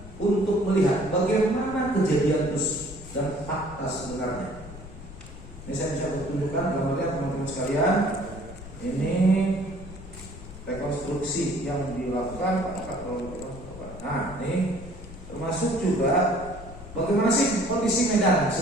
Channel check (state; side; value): noise; left; rumble, 14 dB below the sound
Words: untuk melihat bagaimana kejadian itu dan fakta sebenarnya. Ini saya bisa tunjukkan gambarnya teman-teman sekalian. Ini rekonstruksi yang dilakukan. Nah, ini termasuk juga bagaimana sih kondisi medan